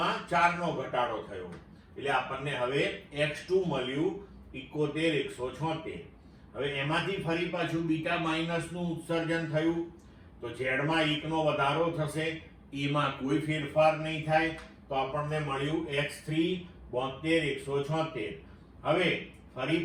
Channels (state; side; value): identical; both; correlation 1.00